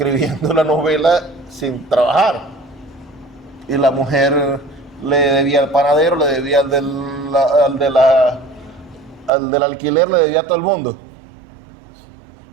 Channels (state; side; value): drops out; left; at 9.3 s